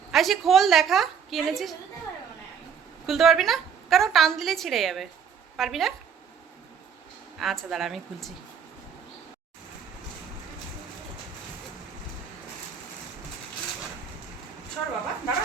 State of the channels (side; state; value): left; quieter; 7.2 dB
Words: আইসি খোল, দেখা কি এনেছিস। খুলতে পারবি না? কেন, টান দিলে ছিঁড়ে যাবে। পারবি না? আচ্ছা দাঁড়া, আমি খুলছি। সর বাবা, দাঁড়া,